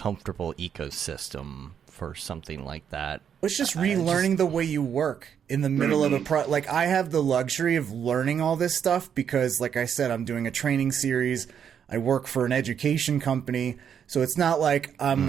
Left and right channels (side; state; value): left; quieter; 8.2 dB